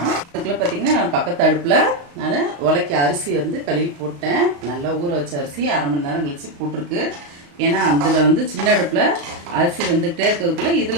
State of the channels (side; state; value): left; late; 35 ms